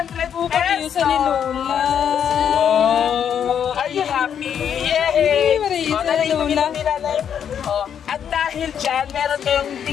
pesos. Sa ni Lola. Oh, are you happy? Yay! Oh, nanay, oh, at dahil dyan, meron kayong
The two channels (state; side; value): quieter; right; 8.5 dB